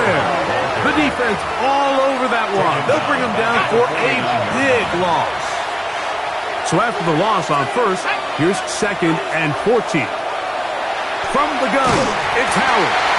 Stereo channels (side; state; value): both; identical; correlation 1.00